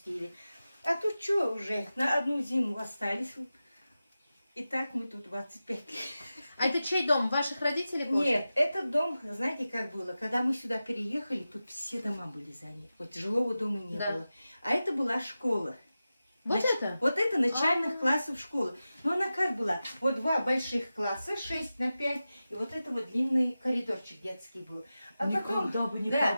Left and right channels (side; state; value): both; inverted; correlation -0.94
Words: А тут что уже, на одну зиму остались. И так мы тут 25 лет. А это чей дом? Ваших родителей? Боже? Нет, этот дом, знаете, как было? Когда мы сюда переехали, тут все дома были заняты. Вот жилого дома не Да. было. А это была школа. Вот это? Вот это начальных А-а-а. классов школы. Но она как была? Вот 2 больших класса, 6 на 5, и вот это вот длинный коридорчик детский был. А потом, Никогда бы не да,